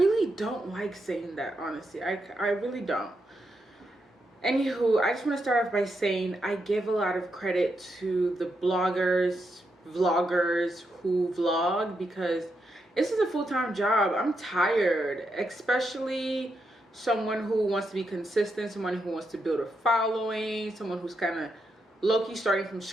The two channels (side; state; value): both; normal; correlation 0.83